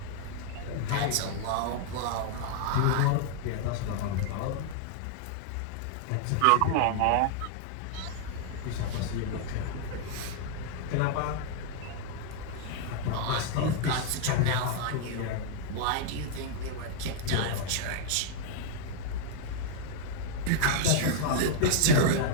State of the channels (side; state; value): both; different; correlation -0.01